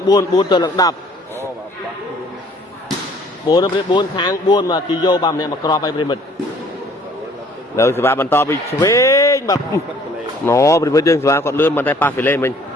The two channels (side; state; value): both; normal; correlation 0.57